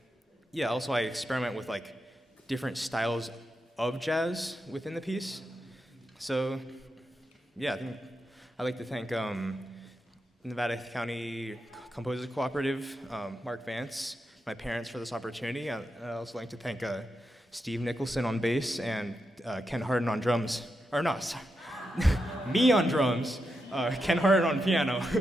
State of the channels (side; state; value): both; normal; correlation 0.86